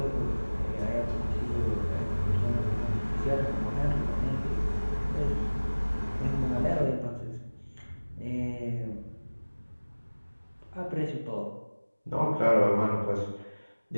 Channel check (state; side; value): inverted; both; correlation -1.00